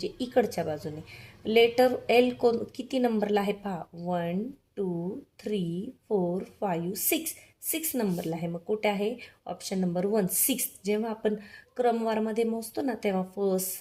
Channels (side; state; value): both; identical; correlation 1.00